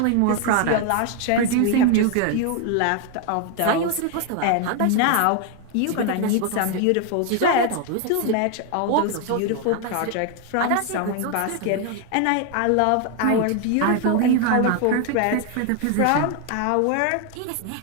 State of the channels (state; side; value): different; both; correlation 0.01